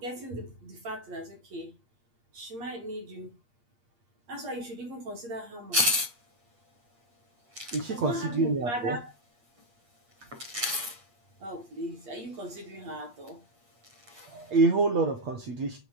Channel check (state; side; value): late; left; 8.5 ms